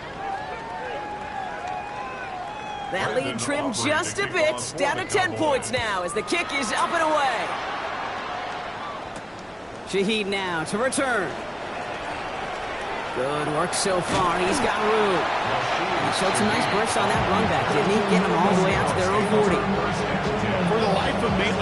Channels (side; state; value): both; identical; correlation 1.00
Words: That lead trimmed just a bit, down to 10 points now as the kick is up and away. Shaheed now to return. Good work so far. He's got room. He showed some nice bursts on that run back, didn't he? Getting them all the way out to their own 40. For the life of me,